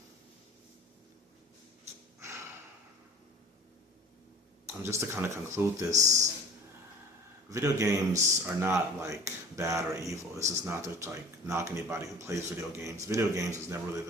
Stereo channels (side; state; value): both; normal; correlation 0.43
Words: just to kind of conclude this, video games are not bad or evil. This is not to knock anybody who plays video games. Video games is never really